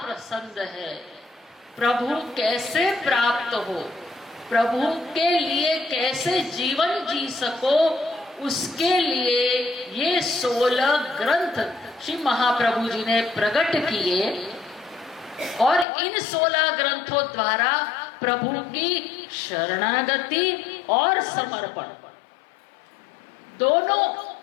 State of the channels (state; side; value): drops out; right; at 15.9 s